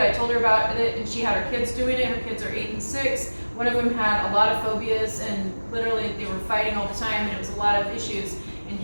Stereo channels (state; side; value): inverted; both; correlation -1.00